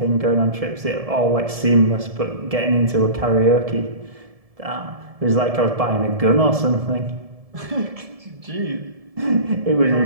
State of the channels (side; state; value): left; late; 1.7 ms